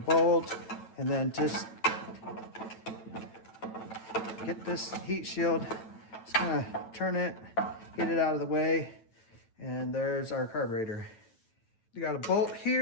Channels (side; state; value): right; late; 9.1 ms